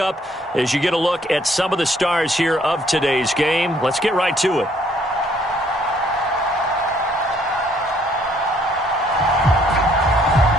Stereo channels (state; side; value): normal; both; correlation 0.65